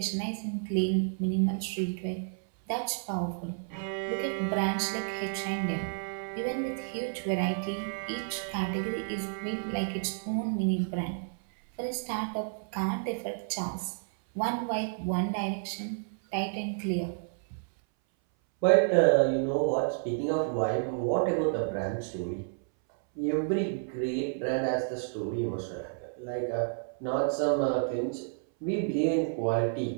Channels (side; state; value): left; silent; 57 dB below the other